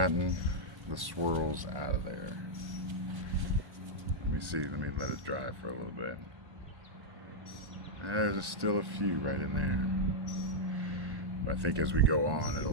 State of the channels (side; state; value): left; late; 1.1 ms